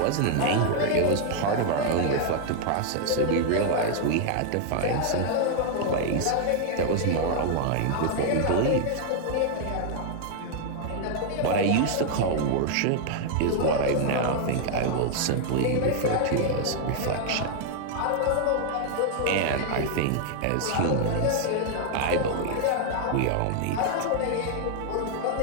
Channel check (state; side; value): different; both; correlation 0.00